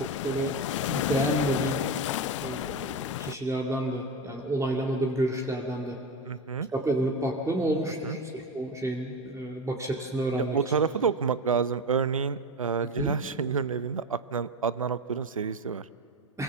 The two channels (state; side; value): normal; both; correlation 0.20